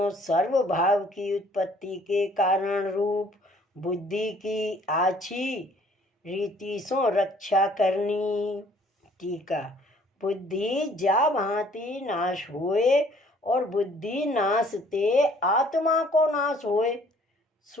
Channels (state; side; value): normal; both; correlation 0.58